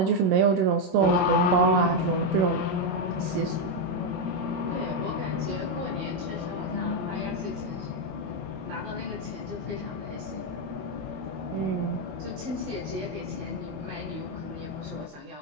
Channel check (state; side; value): late; left; 22 ms